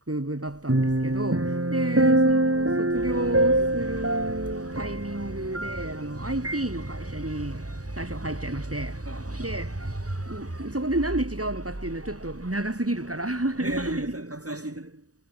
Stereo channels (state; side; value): late; left; 0.66 ms